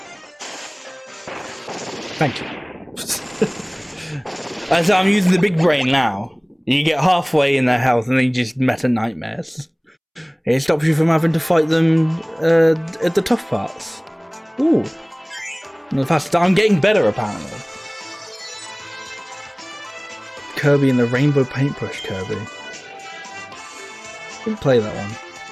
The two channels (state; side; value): identical; both; correlation 1.00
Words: Thank you. As I'm using the big brain now. You get halfway in their health and then you just meta nightmares. It stops you from having to fight them at the tough parts. Ooh. And the faster I'm getting better apparently. Kirby and the Rainbow Paintbrush Kirby. Didn't play that one.